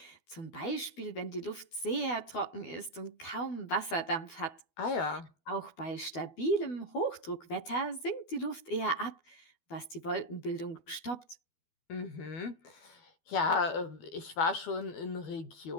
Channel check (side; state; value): right; late; 12 ms